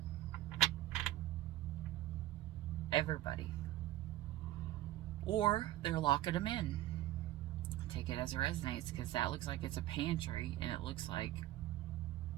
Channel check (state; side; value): quieter; left; 14.8 dB